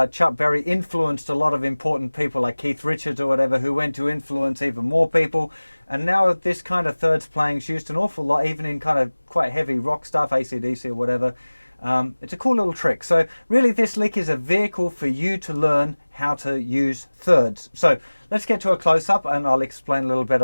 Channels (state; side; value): inverted; both; correlation -1.00